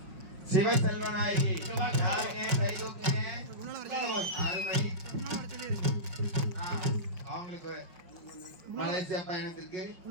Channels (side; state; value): left; late; 5.4 ms